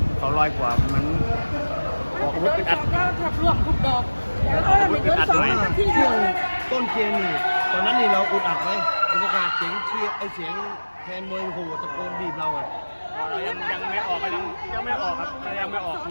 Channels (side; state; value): both; inverted; correlation -1.00